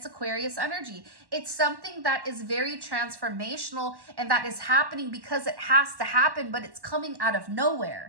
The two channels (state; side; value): late; left; 1.1 ms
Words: Aquarius energy. It's something that is very transformational and that is happening because it has to happen, but it's coming out of